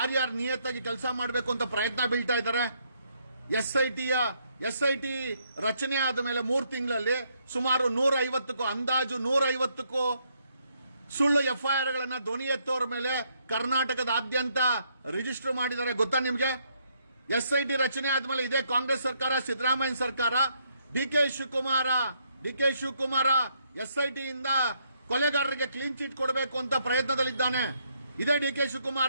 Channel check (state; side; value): inverted; both; correlation -0.73